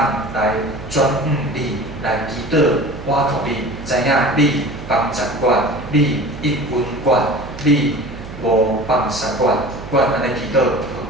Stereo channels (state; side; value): noise; right; hum, 13 dB below the sound